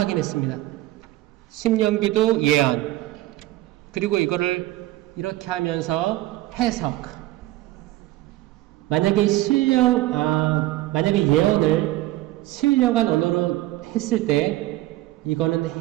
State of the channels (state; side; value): quieter; left; 16.6 dB